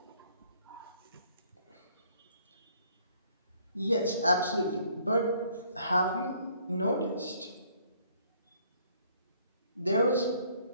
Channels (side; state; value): both; inverted; correlation -0.63